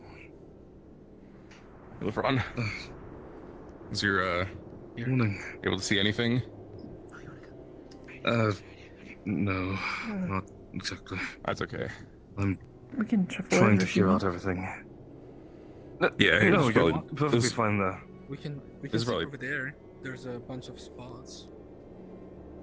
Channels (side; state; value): both; identical; correlation 1.00